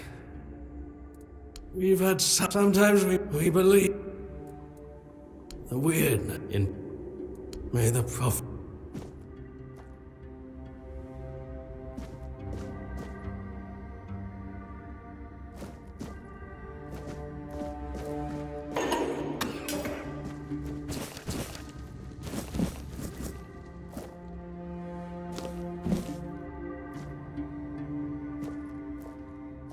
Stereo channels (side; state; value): both; identical; correlation 1.00